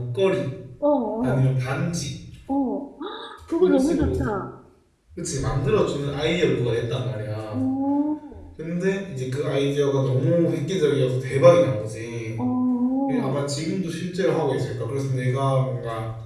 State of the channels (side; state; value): both; identical; correlation 1.00